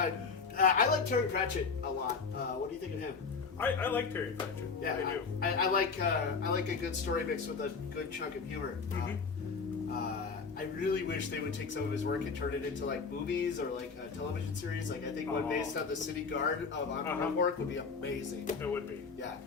I like Terry Pratchett a lot. What do you think of him? I like Terry Pratchett. Yeah, I do. I like a good story mixed with a good chunk of humor. I really wish they would take some of his work and turn it into like movies or like a television series. Like I think one based on the City Guard of Ankh-Morpork would be amazing. It would be. Yeah.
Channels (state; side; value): quieter; right; 5.0 dB